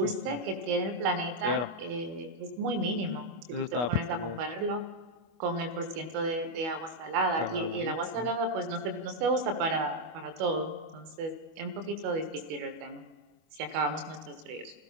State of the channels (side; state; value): left; late; 25 ms